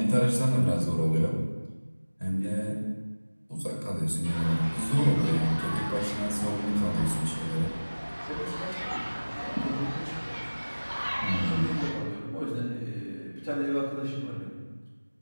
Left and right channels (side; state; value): both; inverted; correlation -1.00